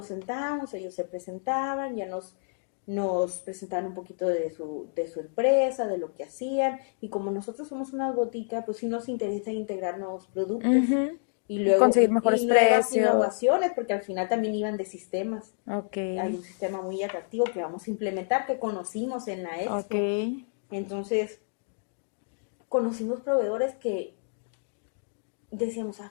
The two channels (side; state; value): right; silent; digital silence